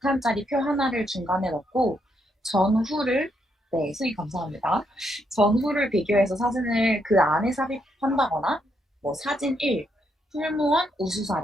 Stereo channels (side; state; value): both; normal; correlation 0.77